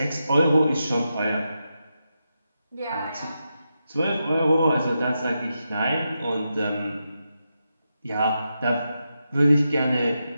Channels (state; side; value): inverted; both; correlation -0.87